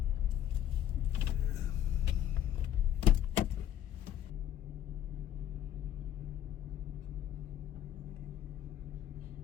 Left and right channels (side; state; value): right; quieter; 10.7 dB